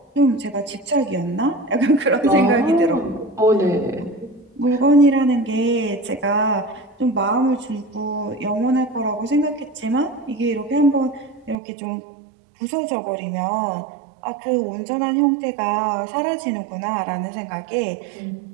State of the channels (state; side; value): drops out; left; at 11.6 s